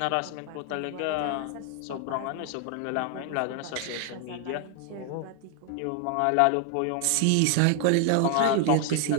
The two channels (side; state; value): both; different; correlation 0.00